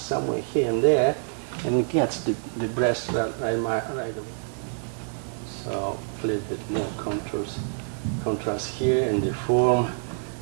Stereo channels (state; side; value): silent; left; digital silence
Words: here and there, and it gets the breast right away. So a little bit more contrast here in the form,